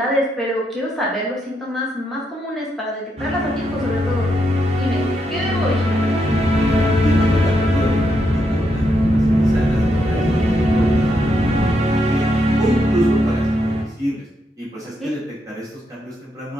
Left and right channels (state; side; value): normal; both; correlation 0.80